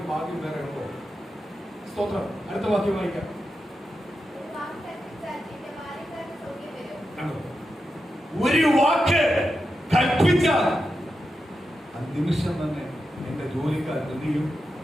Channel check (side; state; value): both; normal; correlation 0.88